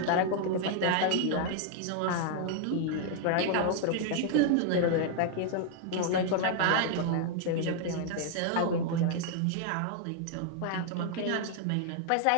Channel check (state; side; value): different; both; correlation 0.00